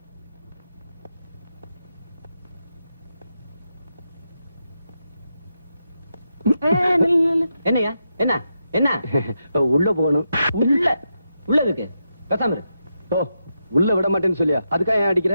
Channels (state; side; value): inverted; both; correlation -0.85